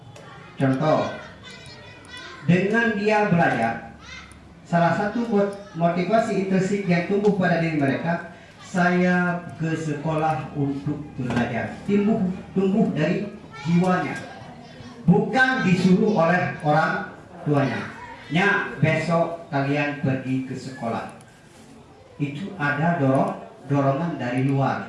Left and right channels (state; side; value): identical; both; correlation 1.00